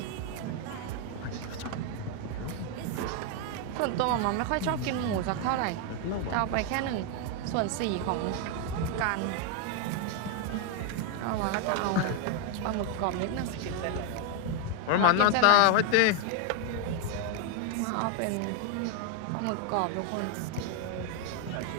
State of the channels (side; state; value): both; different; correlation 0.01